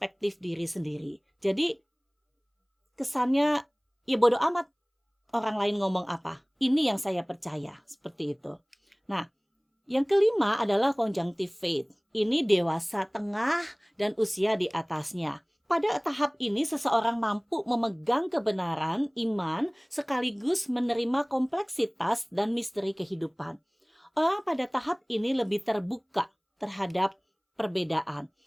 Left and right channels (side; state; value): both; identical; correlation 1.00